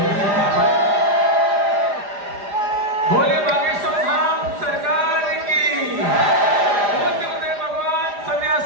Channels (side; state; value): left; late; 4.9 ms